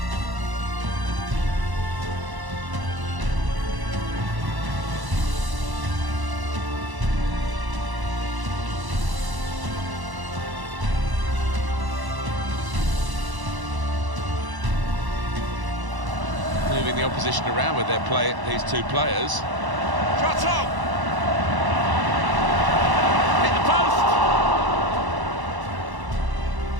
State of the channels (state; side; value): late; left; 1.0 ms